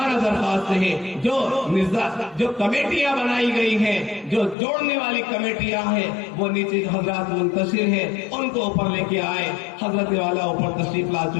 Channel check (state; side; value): drops out; right; at 4.5 s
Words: درخواست ہے جو کمیٹیاں بنائی گئی ہیں، جو جوڑنے والی کمیٹیاں ہیں، وہ نیچے حضرات منتشر ہیں، ان کو اوپر لے کے آئے۔ حضرت والا اوپر تشریف لا